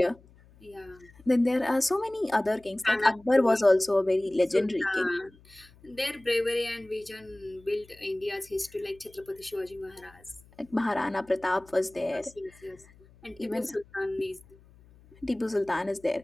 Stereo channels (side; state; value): left; noise; hum, 26 dB below the sound